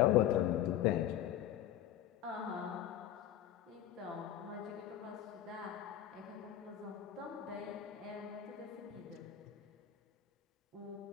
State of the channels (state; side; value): quieter; right; 11.5 dB